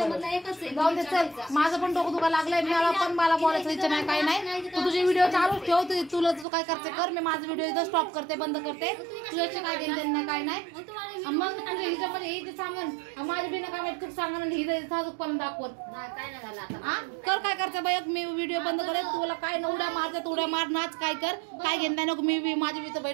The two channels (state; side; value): drops out; left; at 6.5 s